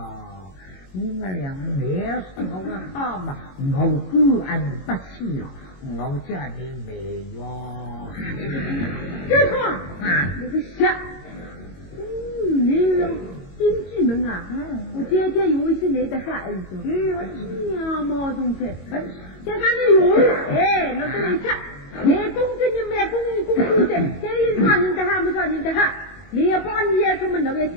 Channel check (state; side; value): late; right; 22 ms